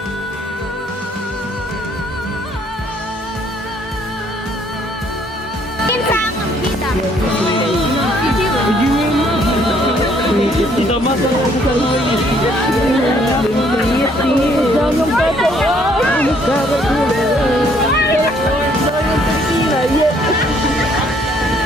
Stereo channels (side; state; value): both; normal; correlation 0.65